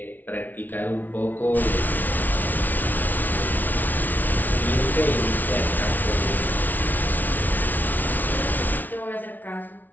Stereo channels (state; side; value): late; right; 0.082 ms